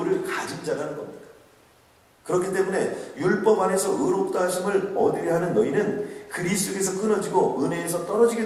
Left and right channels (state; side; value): identical; both; correlation 1.00